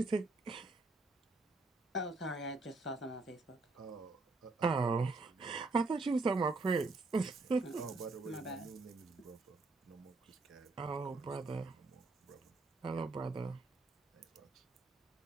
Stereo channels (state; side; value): quieter; left; 3.4 dB